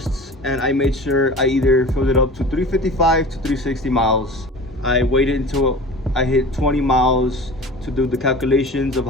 and I made sure I either filled it up to 355 to 360 miles. I waited until I hit 20 miles to do the calculations of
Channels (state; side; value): normal; both; correlation 0.38